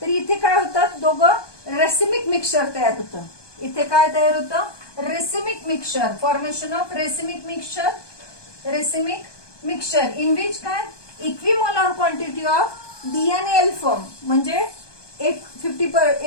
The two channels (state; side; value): late; right; 1.2 ms